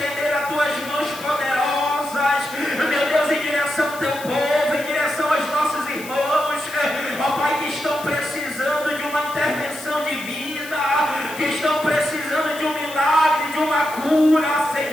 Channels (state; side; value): noise; left; hiss, 15 dB below the sound